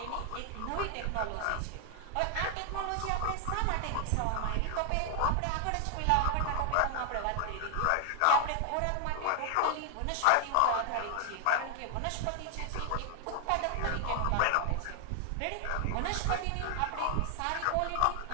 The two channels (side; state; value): both; different; correlation 0.00